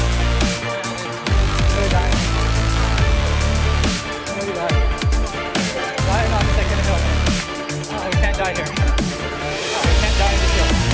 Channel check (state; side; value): identical; both; correlation 1.00